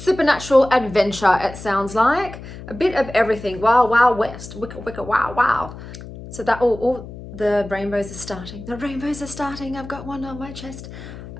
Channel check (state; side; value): noise; left; hum, 13 dB below the sound